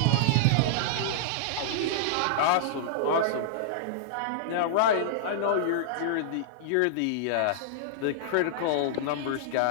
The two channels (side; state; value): both; different; correlation -0.02